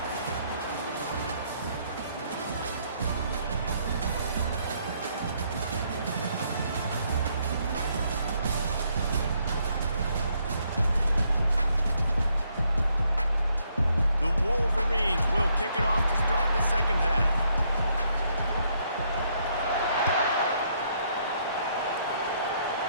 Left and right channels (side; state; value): both; inverted; correlation -0.72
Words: The Wolverines will kick it off to start the second half.